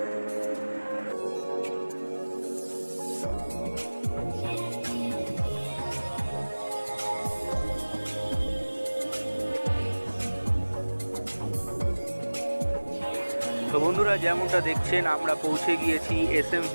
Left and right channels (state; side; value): inverted; both; correlation -1.00